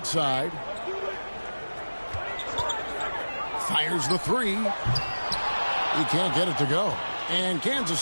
Fires the 3. He can't get it to go. And Kansas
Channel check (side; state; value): both; inverted; correlation -1.00